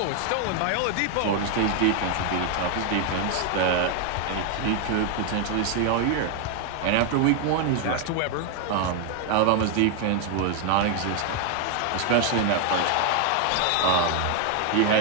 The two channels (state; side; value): different; both; correlation 0.01